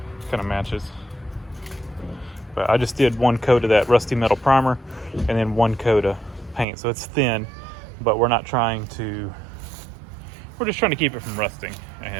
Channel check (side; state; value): left; drops out; at 6.7 s